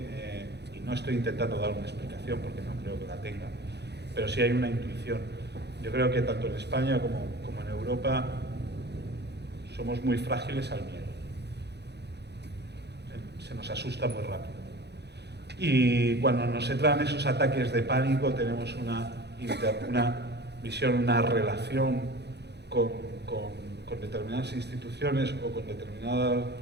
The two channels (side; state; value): left; late; 0.49 ms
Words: y no estoy intentando dar una explicación porque no creo que la tenga, pero sí hay una intuición. Yo creo que tanto en España como en Europa somos muy frágiles al miedo. Se nos asusta muy rápido. Y cuando nos entran esos ataques de pánico tenemos una visión, una relación con determinadas instituciones o con determinada